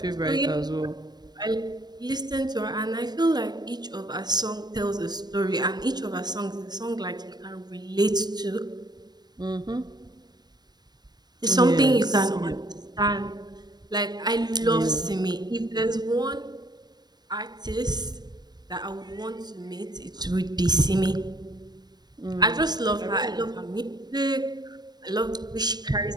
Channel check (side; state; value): left; late; 0.20 ms